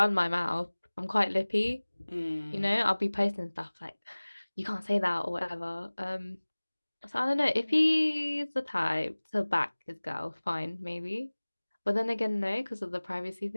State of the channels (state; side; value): inverted; both; correlation -1.00